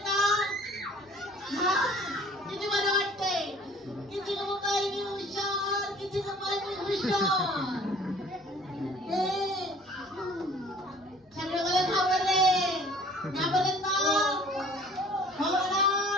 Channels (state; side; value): normal; both; correlation 0.51